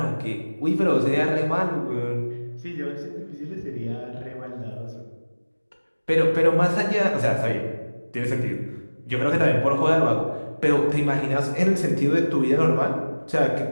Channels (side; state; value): both; inverted; correlation -1.00